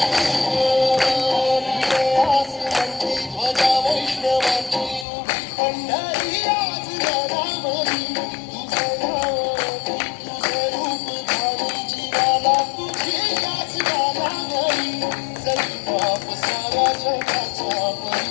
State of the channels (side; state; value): right; drops out; at 5.1 s